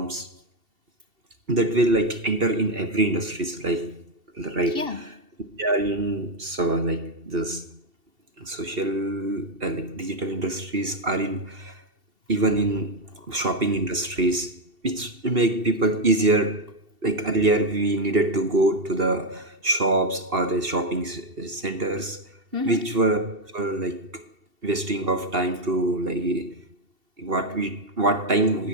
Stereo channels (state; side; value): late; left; 2.7 ms